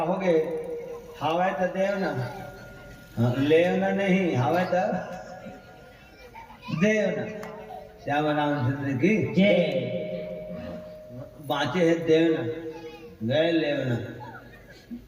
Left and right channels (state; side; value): identical; both; correlation 1.00